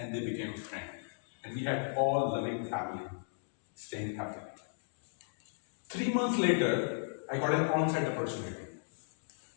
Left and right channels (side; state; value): right; silent; digital silence